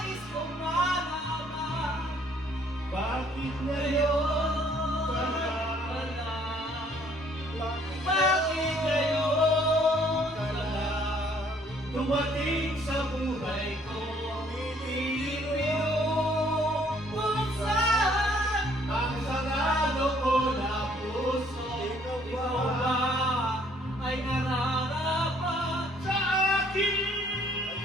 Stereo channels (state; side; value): normal; both; correlation 0.62